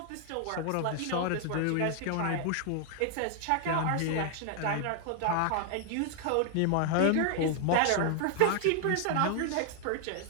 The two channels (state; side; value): different; both; correlation 0.00